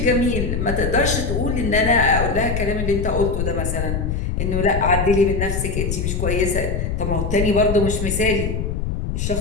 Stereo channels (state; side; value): noise; left; rumble, 1 dB below the sound